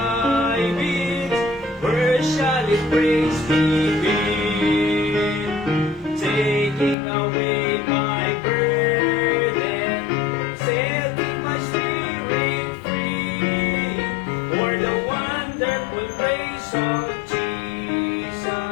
it? Where shall its praise begin? Taking away my burden, setting my spirit free. For the wonderful grace of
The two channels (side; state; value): right; drops out; at 7.0 s